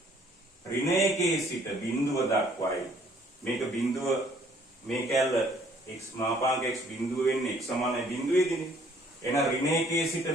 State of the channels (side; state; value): both; normal; correlation 0.61